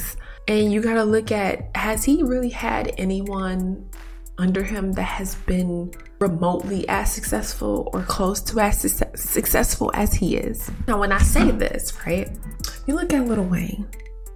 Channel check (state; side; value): identical; both; correlation 1.00